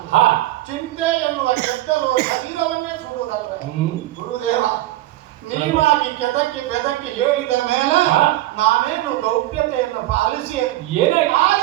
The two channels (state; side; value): quieter; left; 16.3 dB